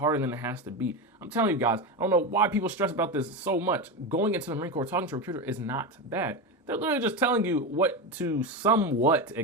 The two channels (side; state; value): both; normal; correlation 0.17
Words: than it has to be. I'm telling you guys, I don't know why people stress about this so much. Going into the Marine Corps, talking to a recruiter is not bad. They're literally just telling you what to somewhat